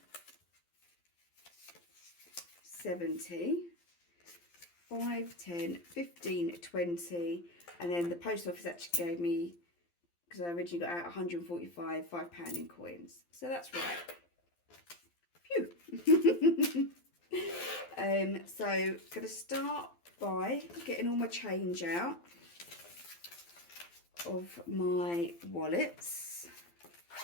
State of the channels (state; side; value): late; right; 12 ms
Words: 70, 5, 10, 15, 20, and then the post office actually gave me, because I originally got out 145 £5 in coins. So that's right. Phew. So I'm going to start by getting all my change out of my wallets.